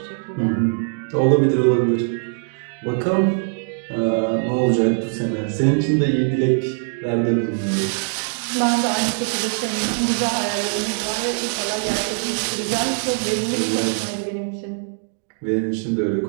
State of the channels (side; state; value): left; silent; 59 dB below the other